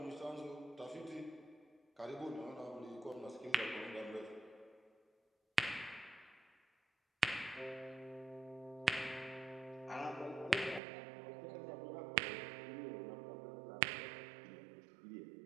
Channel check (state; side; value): drops out; left; at 10.8 s